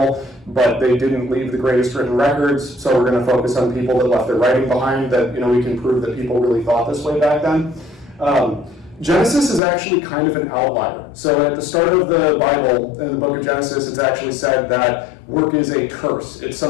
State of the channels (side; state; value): right; drops out; at 9.6 s